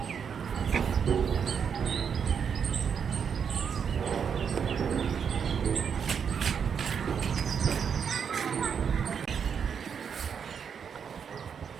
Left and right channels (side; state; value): left; quieter; 7.1 dB